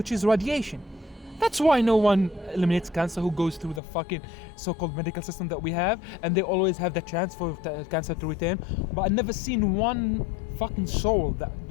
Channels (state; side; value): drops out; right; at 3.8 s